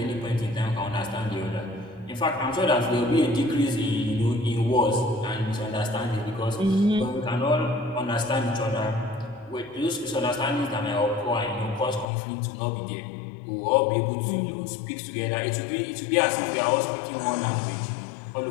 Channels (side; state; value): right; drops out; at 12.1 s